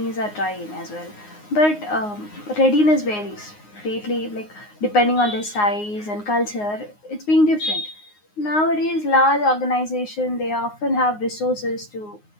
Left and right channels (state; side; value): late; right; 9.6 ms